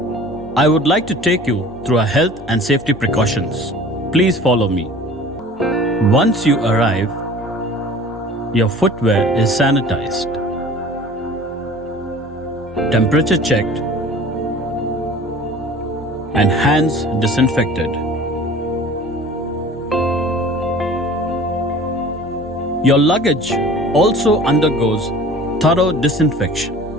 I would like to take you through our health and safety precautions. Please follow me. Once you arrive, your footwear is sanitized, temperature checked, and hands disinfected. Your luggage also undergoes thorough disinfection.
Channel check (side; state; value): both; normal; correlation 0.44